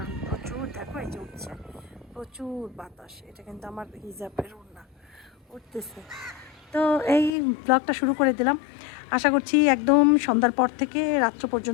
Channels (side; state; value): right; drops out; at 7.3 s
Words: প্রচুর, দেখো এই যে উঠছে প্রচুর বাতাস। এটা কিন্তু আমার হিজাবের ওড়না উঠতেছে। তো এই ব্লগটা শুরু করে দিলাম। আশা করছি একদম সন্ধ্যার পর থেকে রাত্র